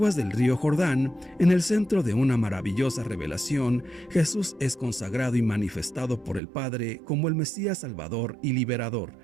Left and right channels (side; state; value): left; drops out; at 6.4 s